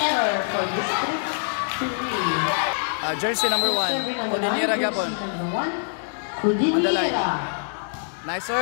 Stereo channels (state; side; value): silent; right; digital silence